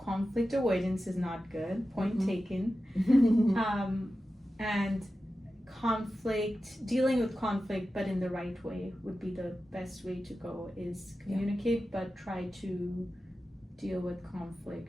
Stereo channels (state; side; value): normal; both; correlation 0.93